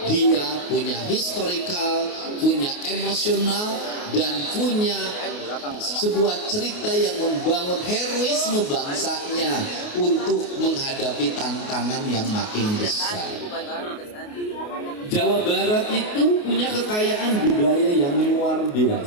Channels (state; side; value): late; right; 28 ms